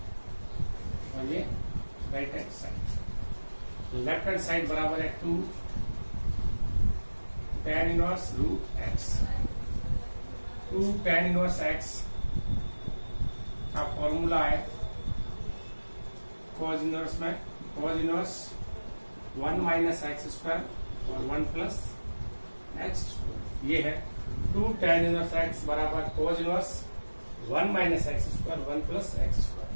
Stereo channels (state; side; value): inverted; both; correlation -1.00